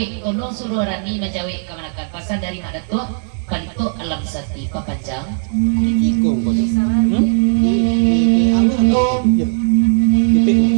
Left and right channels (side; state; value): left; silent; 68 dB below the other